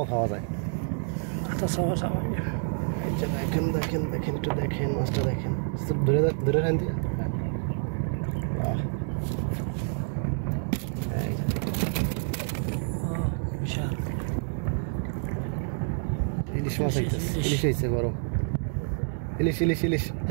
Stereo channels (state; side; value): silent; left; 58 dB below the other